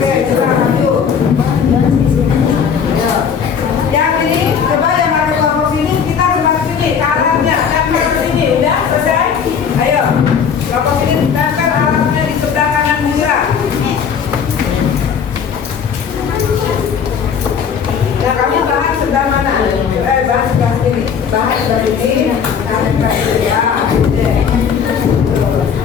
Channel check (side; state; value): right; quieter; 7.0 dB